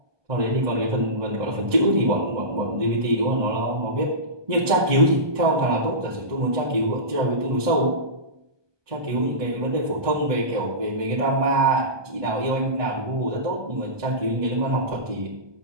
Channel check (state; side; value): late; left; 1.2 ms